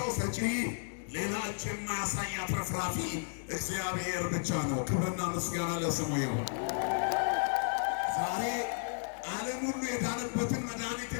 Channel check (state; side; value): silent; right; digital silence